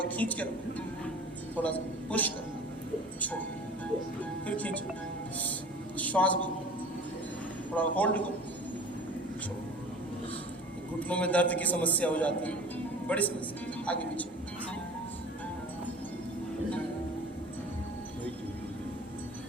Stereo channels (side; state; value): both; normal; correlation 0.41